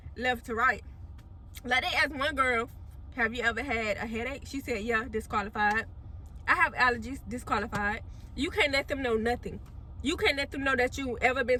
left to right. Like, they asked one girl, have you ever had a headache? She said, yeah, disqualified. I have allergies, disqualified. You can't let them know nothing. You can't let them know that you ever been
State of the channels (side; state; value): both; identical; correlation 1.00